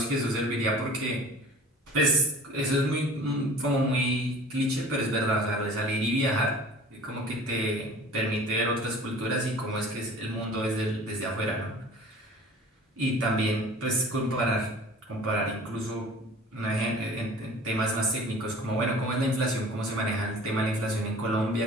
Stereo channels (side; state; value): both; normal; correlation 0.44